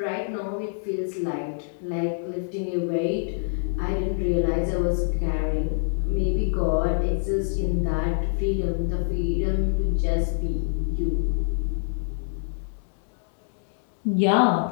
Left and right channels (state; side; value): silent; right; digital silence